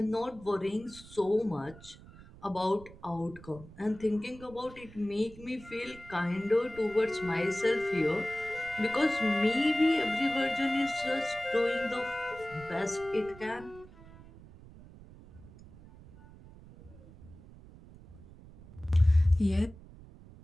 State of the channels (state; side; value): noise; right; rumble, 20 dB below the sound